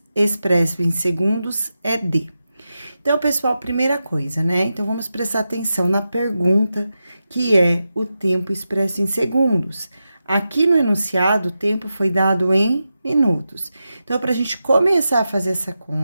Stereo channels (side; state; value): both; inverted; correlation -0.90